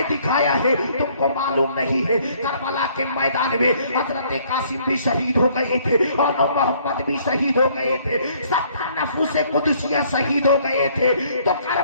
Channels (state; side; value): inverted; both; correlation -0.62